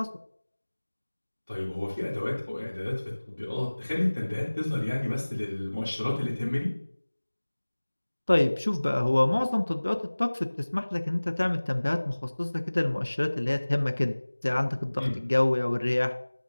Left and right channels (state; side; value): inverted; both; correlation -1.00